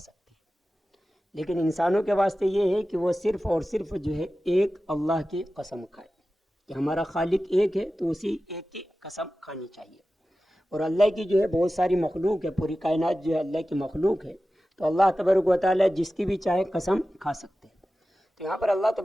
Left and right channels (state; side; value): normal; both; correlation 0.95